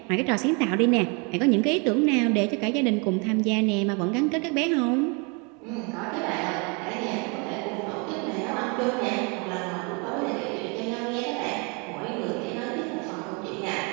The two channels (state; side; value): quieter; left; 32.4 dB